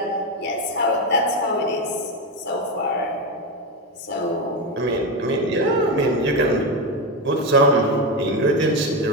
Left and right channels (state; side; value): normal; both; correlation 0.13